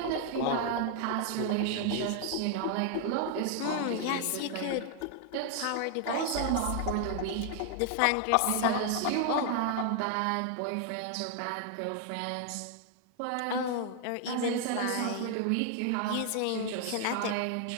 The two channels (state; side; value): different; both; correlation 0.00